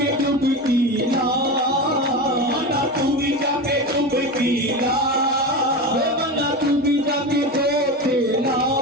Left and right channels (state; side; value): normal; both; correlation 0.23